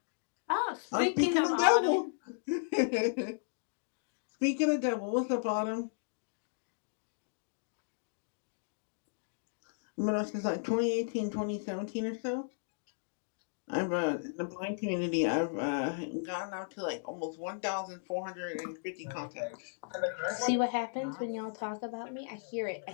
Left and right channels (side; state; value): right; silent; digital silence